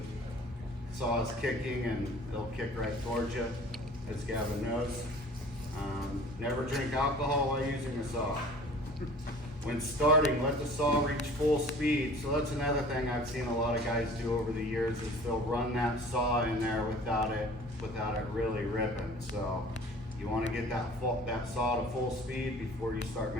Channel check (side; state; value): both; normal; correlation 0.46